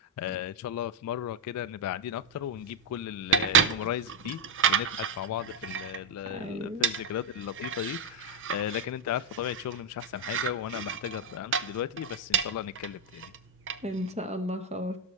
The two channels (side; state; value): both; normal; correlation 0.03